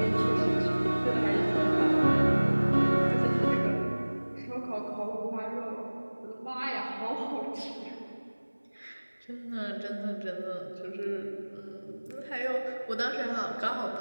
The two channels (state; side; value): inverted; both; correlation -1.00